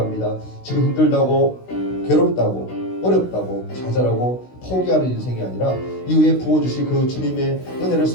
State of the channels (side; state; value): right; late; 16 ms